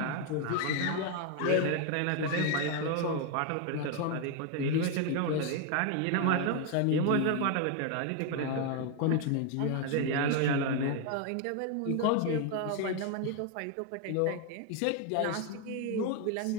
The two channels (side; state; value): both; different; correlation 0.01